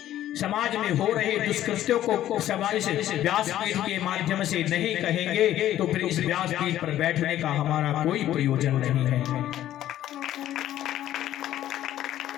समाज में हो रहे दुष्कृत्यों को इस व्यासपीठ के माध्यम से नहीं कहेंगे तो फिर इस व्यासपीठ पर बैठने का हमारा कोई प्रयोजन नहीं है।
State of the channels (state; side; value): quieter; right; 12.7 dB